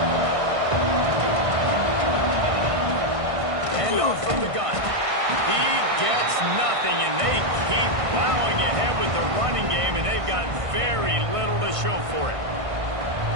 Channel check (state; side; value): late; left; 1.5 ms